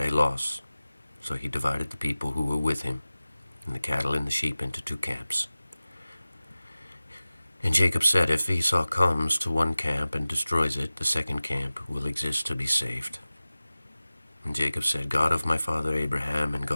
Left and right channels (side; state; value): both; inverted; correlation -0.97